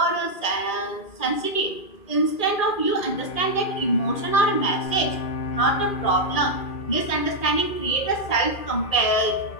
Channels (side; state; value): right; late; 2.4 ms